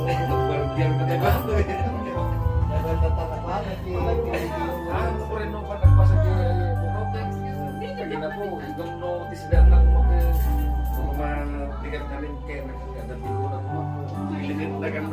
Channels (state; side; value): identical; both; correlation 1.00